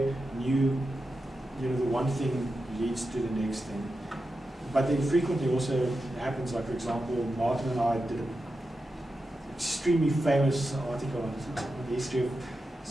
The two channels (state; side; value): normal; both; correlation 0.90